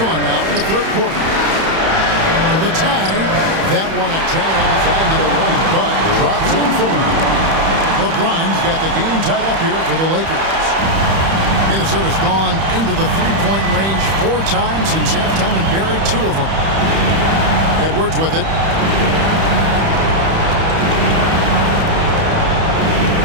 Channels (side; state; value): left; late; 31 ms